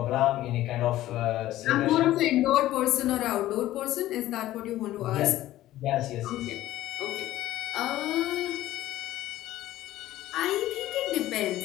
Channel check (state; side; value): quieter; right; 14.8 dB